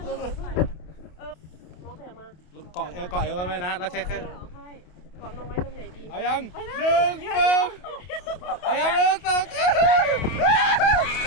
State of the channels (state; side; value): late; right; 28 ms